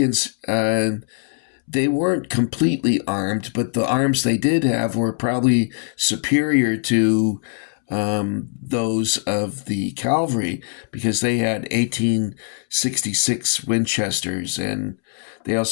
they weren't completely armed, but the arms they did have were probably superior to those of the cavalry, because they had 1866 Winchesters, and they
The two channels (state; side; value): silent; right; 65 dB below the other